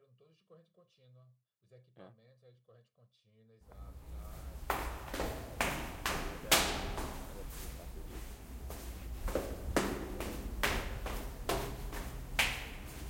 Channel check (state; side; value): identical; both; correlation 1.00